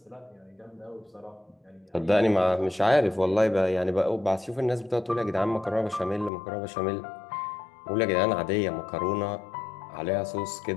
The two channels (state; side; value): drops out; right; at 6.3 s